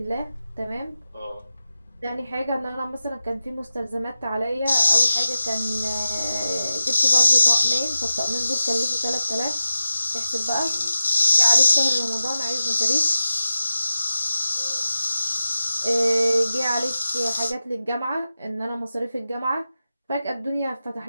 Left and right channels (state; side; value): inverted; both; correlation -0.92